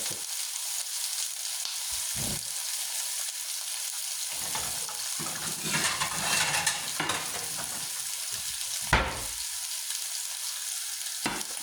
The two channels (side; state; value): both; identical; correlation 1.00